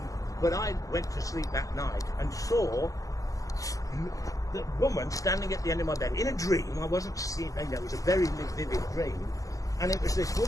but I went to sleep that night and saw the woman standing at the end of my bed in a dream. I wasn't seeing, you know, it was a very vivid dream, and it was this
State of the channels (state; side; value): late; right; 0.17 ms